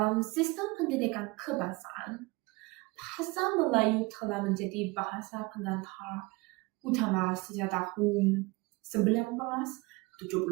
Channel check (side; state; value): left; quieter; 24.6 dB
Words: sistem pendidikan kebangsaan, bahasa Melayu telah menjadi bahasa pengantar utama sejak tahun